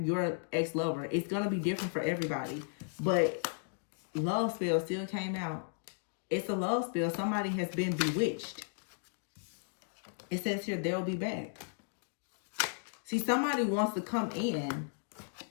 It's going to be different for everybody. But love spell still came out. It's a love spell. Somebody has been bewitched. It says here, they'll be back. See, somebody wants to come in,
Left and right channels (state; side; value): silent; right; digital silence